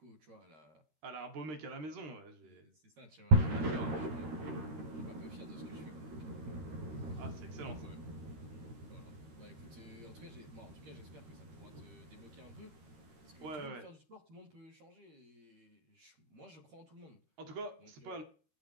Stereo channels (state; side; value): late; left; 13 ms